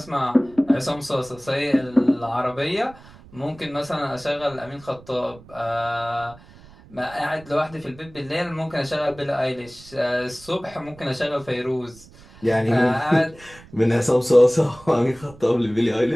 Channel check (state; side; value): noise; right; rumble, 22 dB below the sound